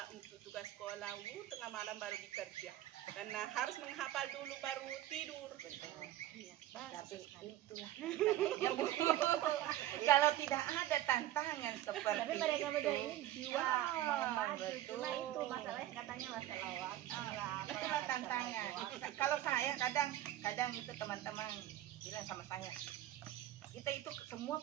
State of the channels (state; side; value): quieter; left; 13.9 dB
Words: untuk tugas sekolah, tengah malam baru bekerja, karena harus menghafal dulu baru tidur. Tapi itulah kalau tidak ada tantangan seperti tapi mereka itu, ini jiwa mau maju, cuma itu masalahnya katanya masalah waktu lah. Itulah tantangan. Kalau saya kadang itu teman-teman bilang sama saya, kita itu semua